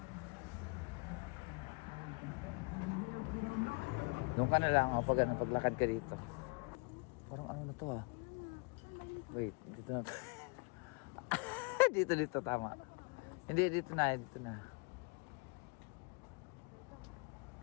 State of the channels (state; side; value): quieter; right; 32.7 dB